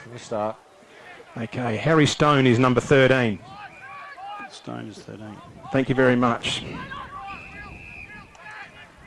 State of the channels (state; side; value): identical; both; correlation 1.00